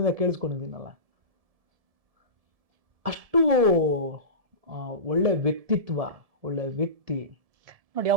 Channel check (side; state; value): left; late; 1.7 ms